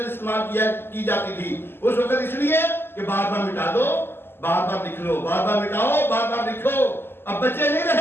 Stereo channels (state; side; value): late; right; 0.11 ms